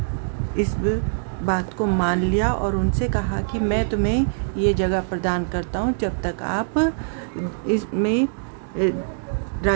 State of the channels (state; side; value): silent; left; digital silence